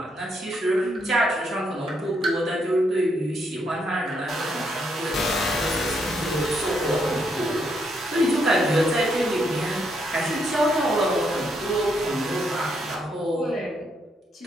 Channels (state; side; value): normal; both; correlation 0.76